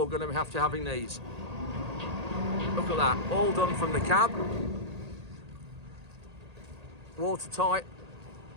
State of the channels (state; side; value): late; left; 1.8 ms